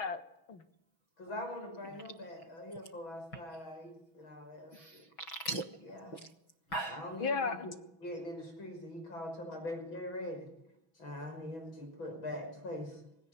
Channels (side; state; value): right; late; 6.1 ms